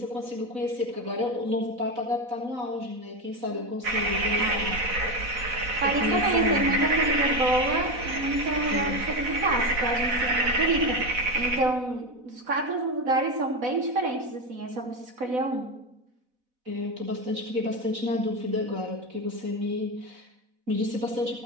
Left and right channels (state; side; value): late; left; 4.0 ms